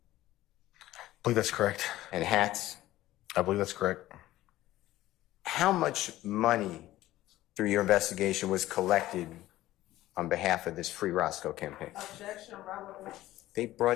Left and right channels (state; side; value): quieter; right; 15.6 dB